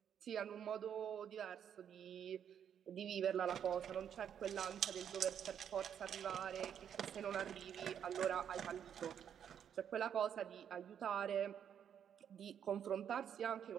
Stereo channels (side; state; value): left; quieter; 8.7 dB